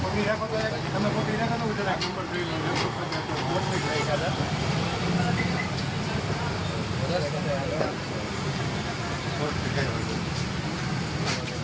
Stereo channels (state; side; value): identical; both; correlation 1.00